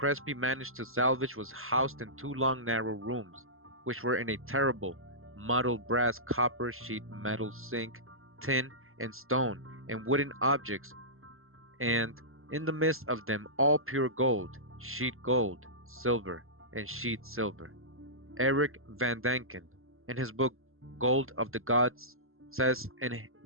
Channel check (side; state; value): left; late; 0.61 ms